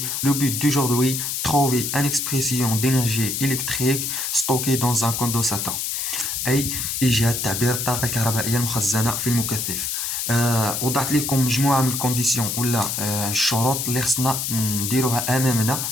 Le but d'aujourd'hui, trouver une expression d'énergie électrique stockée dans un condensateur. أي إيجاد تعبير الطاقة الكهربائية المخزنة في المكثف. وضعت لكم مجموعة من الكونديسيون ولا الشروط اللي خصنا نديروها أمامنا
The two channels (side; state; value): left; noise; hiss, 2 dB below the sound